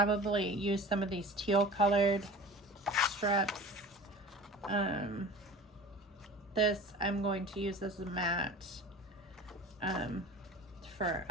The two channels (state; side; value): normal; both; correlation 0.38